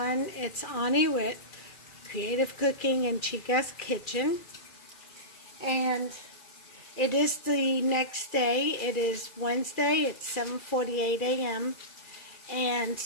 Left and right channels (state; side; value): late; right; 2.3 ms